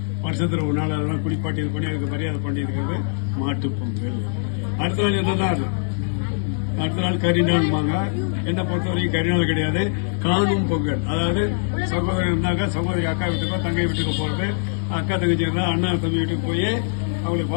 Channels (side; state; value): right; silent; 59 dB below the other